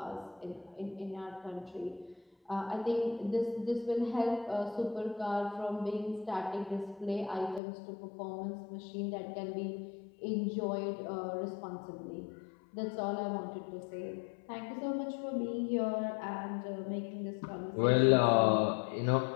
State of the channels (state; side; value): drops out; right; at 7.6 s